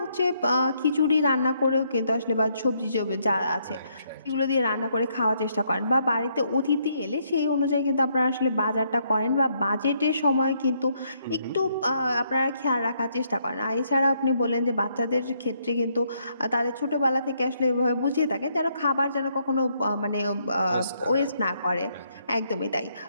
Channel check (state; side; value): inverted; both; correlation -0.73